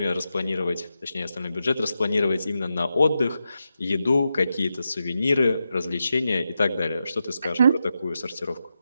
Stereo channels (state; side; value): inverted; both; correlation -0.88